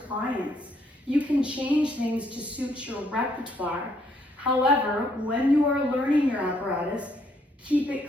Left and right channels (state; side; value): normal; both; correlation 0.70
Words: You can change things to suit your repertoire. However, when you are learning your apparatus, keep